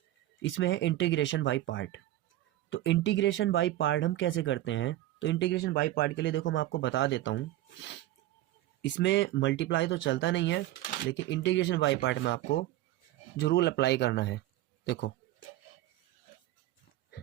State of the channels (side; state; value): left; quieter; 14.9 dB